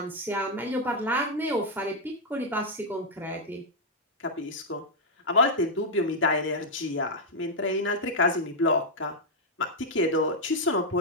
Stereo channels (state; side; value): normal; both; correlation -0.03